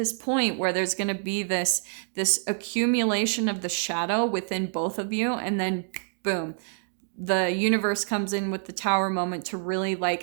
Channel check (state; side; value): silent; left; digital silence